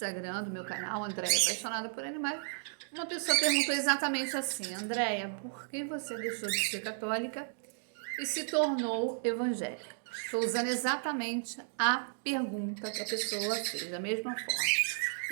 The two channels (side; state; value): left; silent; digital silence